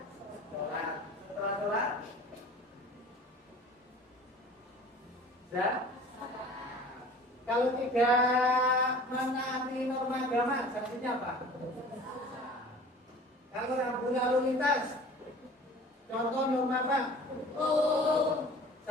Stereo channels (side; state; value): both; normal; correlation 0.44